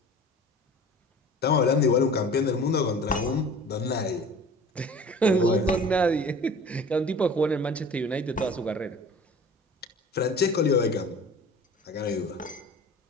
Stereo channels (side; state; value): both; normal; correlation 0.42